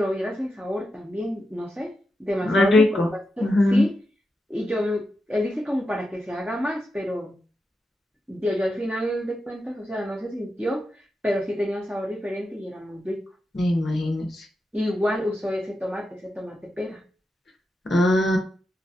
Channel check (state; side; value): normal; both; correlation 0.87